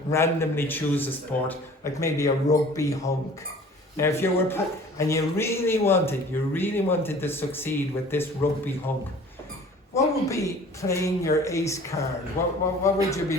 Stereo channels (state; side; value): normal; both; correlation 0.47